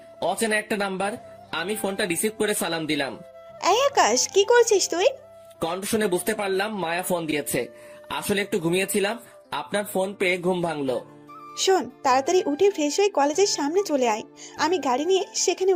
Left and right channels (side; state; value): both; identical; correlation 1.00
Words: অচেনা একটা নাম্বার। আমি ফোনটা রিসিভ করে সালাম দিলাম। এই আকাশ, কি করছিস তুই? কণ্ঠ শুনে বুঝতে পারলাম মায়া ফোন দিয়েছে। আসলে একটু ঘুমিয়েছিলাম, আপনার ফোন পেয়ে ঘুম ভাঙলো। শোন, তাড়াতাড়ি উঠে ফ্রেশ হয়ে কলেজের সামনে চলে আয়। আমি গাড়ি নিয়ে সেখানে